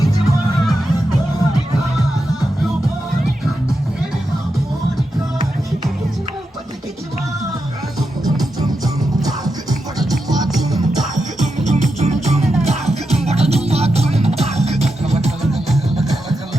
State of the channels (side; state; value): both; normal; correlation 0.87